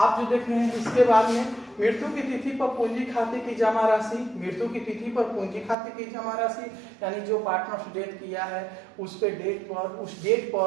जो देख रहे हैं इसके बाद में मृत्यु की तिथि पर पूंजी खाते की जमा राशि, मृत्यु की तिथि पर पूंजी खाते की जमा राशि, यानी जो पार्टनर डेथ किया है उस डेट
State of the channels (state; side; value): drops out; left; at 5.8 s